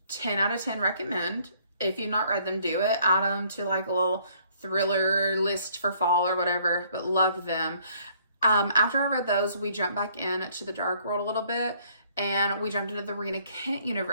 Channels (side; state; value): both; inverted; correlation -0.63